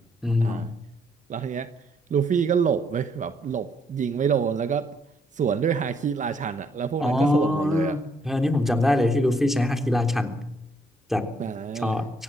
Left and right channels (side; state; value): both; normal; correlation 0.70